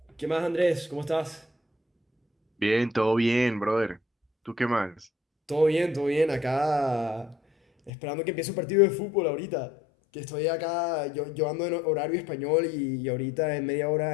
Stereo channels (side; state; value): right; drops out; at 7.9 s